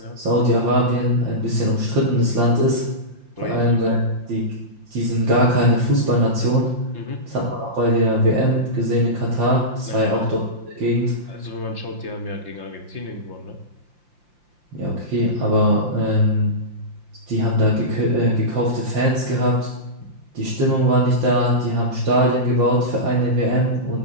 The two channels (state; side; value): late; left; 5.8 ms